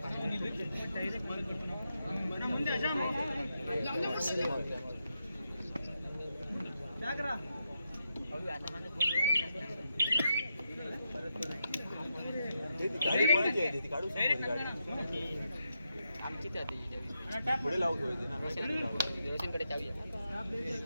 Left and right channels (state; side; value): inverted; both; correlation -0.84